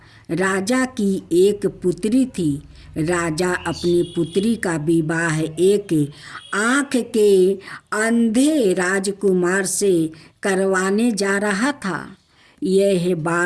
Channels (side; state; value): both; identical; correlation 1.00